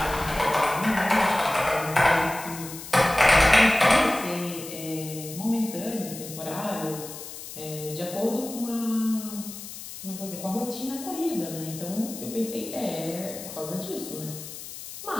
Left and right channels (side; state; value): left; noise; hiss, 12 dB below the sound